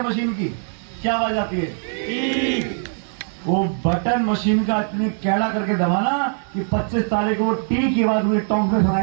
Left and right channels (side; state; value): left; silent; 65 dB below the other